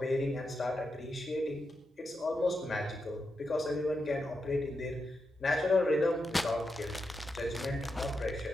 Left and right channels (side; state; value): both; normal; correlation 0.86